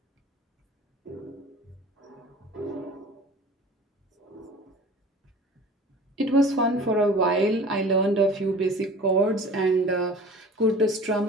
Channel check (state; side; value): normal; both; correlation 0.42